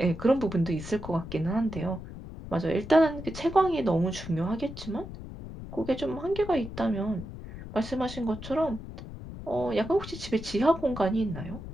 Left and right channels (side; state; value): left; noise; rumble, 11 dB below the sound